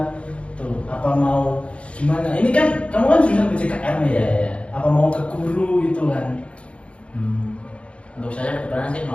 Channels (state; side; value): late; right; 0.060 ms